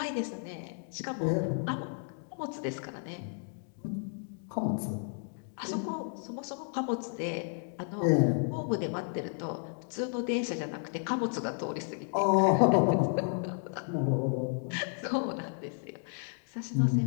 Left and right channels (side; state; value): right; silent; 56 dB below the other